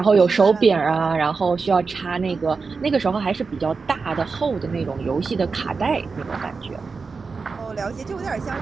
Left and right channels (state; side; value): quieter; left; 4.7 dB